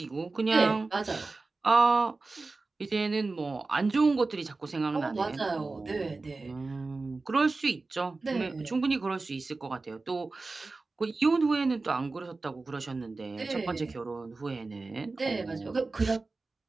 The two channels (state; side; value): quieter; left; 3.6 dB